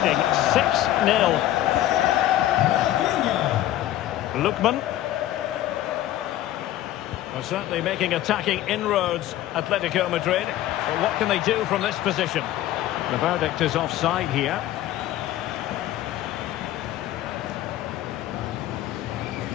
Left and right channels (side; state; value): right; quieter; 13.6 dB